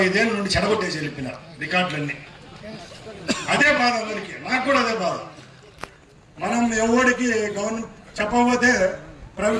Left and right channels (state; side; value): identical; both; correlation 1.00